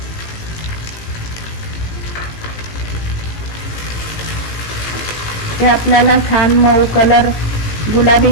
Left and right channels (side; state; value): right; late; 18 ms